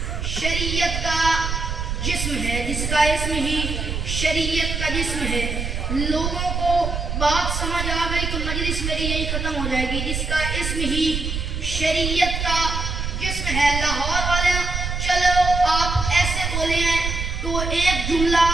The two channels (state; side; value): noise; right; rumble, 3 dB below the sound